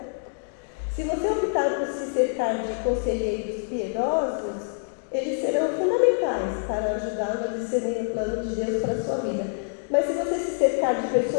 Se você optar por se cercar de conselheiros piedosos, eles serão fundamentais para ajudá-lo a discernir o plano de Deus para a sua vida. Mas se você se cercar de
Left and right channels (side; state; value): right; silent; digital silence